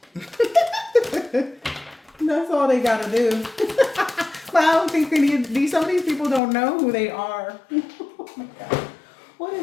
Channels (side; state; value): right; drops out; at 6.4 s